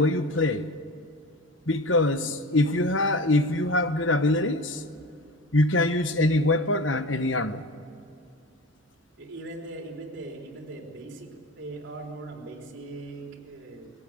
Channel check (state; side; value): normal; both; correlation 0.32